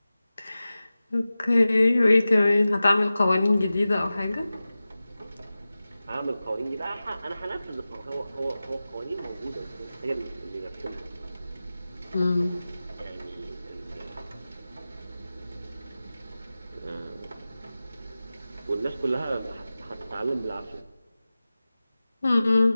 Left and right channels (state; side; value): inverted; both; correlation -0.96